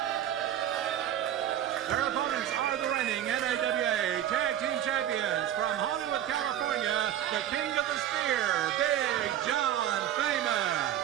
Their opponents are the reigning NAWA Tag Team Champions from Hollywood, California, the King of the Spear, Big John Famous.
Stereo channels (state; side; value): quieter; left; 11.2 dB